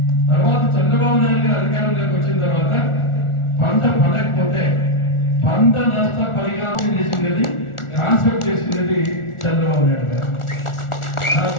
తర్వాత చంద్రబాబు నాయుడు గారు అధికారంలోకి వచ్చిన తర్వాత పంట పండకపోతే పంట నష్ట పరిహారం చేసింది, కాన్సెప్ట్ చేసింది చంద్రబాబు నాయుడు గారు.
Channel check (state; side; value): late; right; 1.4 ms